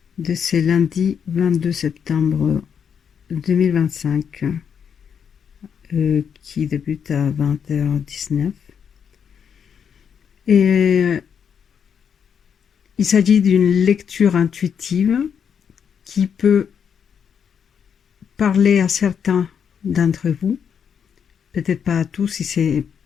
de ce lundi 22 septembre 2025 qui débute à 20h19. Et il s'agit d'une lecture intuitive qui peut parler à certains d'entre vous, peut-être pas à tous. Si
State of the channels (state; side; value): quieter; right; 7.4 dB